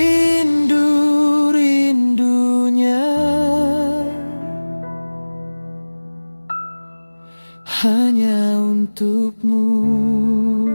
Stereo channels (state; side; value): inverted; both; correlation -1.00